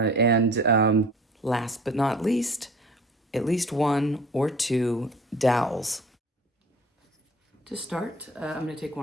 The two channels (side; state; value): both; normal; correlation 0.46